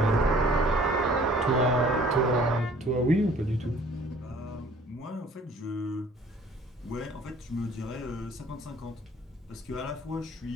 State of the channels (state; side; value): normal; both; correlation 0.54